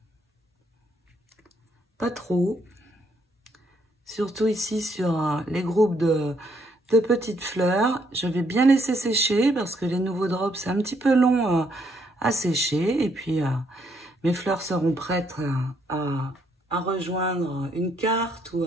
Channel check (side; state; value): both; normal; correlation 0.72